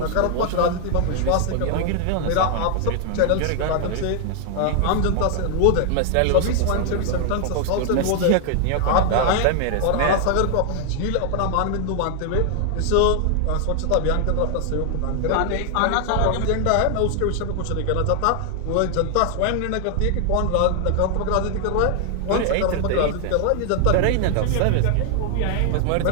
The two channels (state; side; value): different; both; correlation 0.00